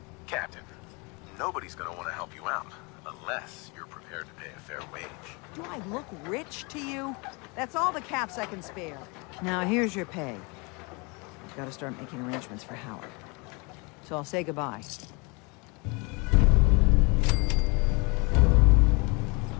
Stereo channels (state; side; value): quieter; right; 29.5 dB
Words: Captain, nobody's gonna want to help you out unless you're prepared to pay a fair wage. Do I look rich to you? That's all the caps I can spare. Now, here's your pay. I've got to start making arrangements for Howard. So I'll say goodbye.